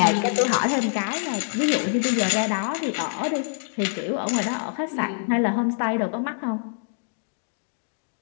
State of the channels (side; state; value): right; silent; digital silence